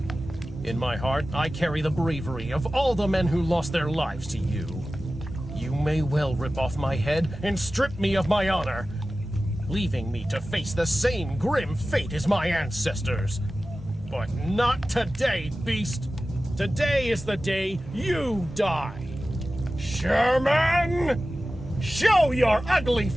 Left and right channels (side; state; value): both; normal; correlation 0.95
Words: In my heart, I carry the bravery of all the men who lost their lives to you. You may well rip off my head and strip me of my honor, leaving me to face the same grim fate as my ancestors. But not today, beast. Today is the day you die. Sherman! Show your ugly